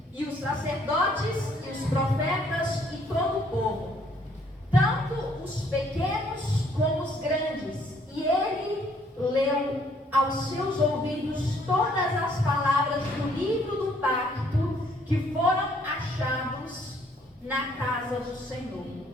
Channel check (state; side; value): normal; both; correlation 0.64